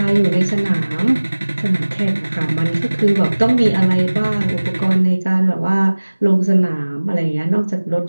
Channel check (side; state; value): both; inverted; correlation -1.00